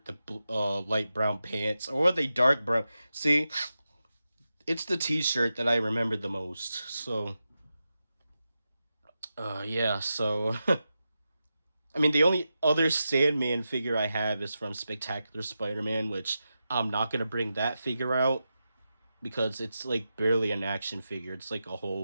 the light brown pants, or the dark brown. See, it's the t-shirt that I remember the most. So, yeah, so I mean, the only other Sandman figure I have is from Spectacular Spider-Man, which I'm not gonna bring that figure out because it's like barely an action figure. It's like a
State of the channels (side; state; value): both; inverted; correlation -0.90